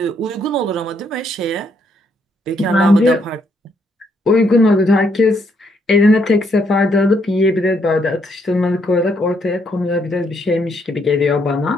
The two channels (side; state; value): both; normal; correlation 0.73